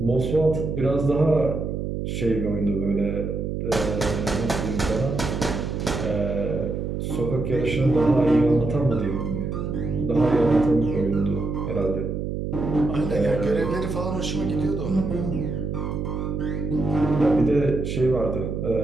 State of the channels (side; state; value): right; noise; hum, 3 dB below the sound